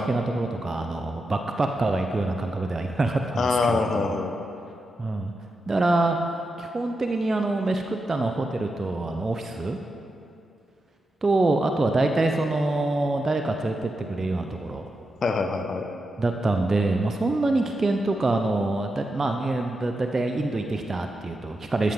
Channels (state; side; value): normal; both; correlation 0.87